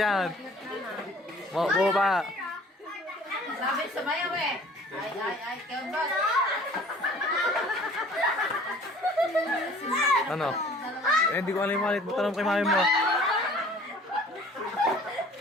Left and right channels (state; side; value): normal; both; correlation 0.50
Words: Bumaba. Sabi sumayaw eh. Ay, kembot. Ano? Eh, hindi ko alam yung malit mo. Tanong kay mami mo.